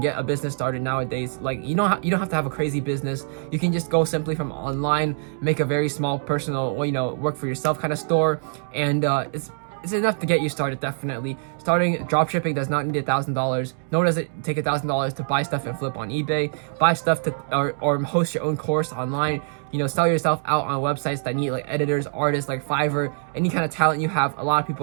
a business started nowadays. Like you don't have to have a crazy business. You can just go simply from online, make a very small personal, work for yourself kind of store, and it's enough to get you started. Definitely starting dropshipping does not need $1,000, nor does it take $1,000 to buy stuff and flip on eBay, buy stuff to or host your own course online. Sell yourself out on websites that need like editors, artists, like Fiverr. Any kind of talent you have, a lot of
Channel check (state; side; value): silent; left; digital silence